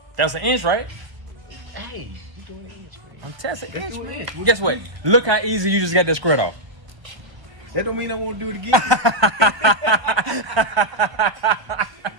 That's an inch, right? Hey, you doing an inch, man. I'm testing Let's inch, do an man. inch. Guess what? Look how easy you just got that squirt off. That don't mean I won't do it again.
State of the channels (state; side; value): late; left; 1.2 ms